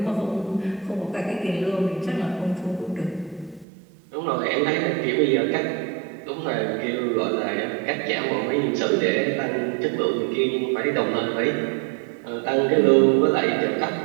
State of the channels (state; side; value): drops out; left; at 3.7 s